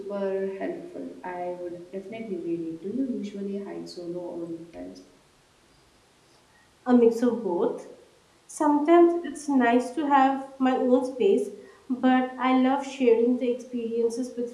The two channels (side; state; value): both; identical; correlation 1.00